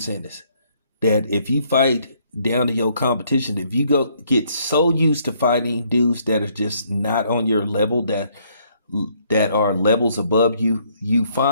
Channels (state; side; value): inverted; both; correlation -0.67